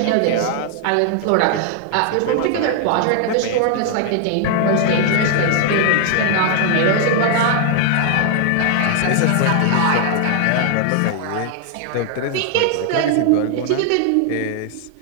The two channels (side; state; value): both; different; correlation 0.00